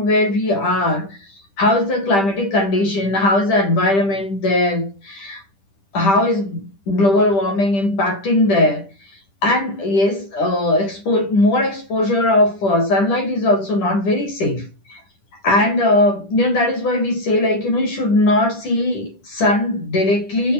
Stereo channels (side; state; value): right; late; 10 ms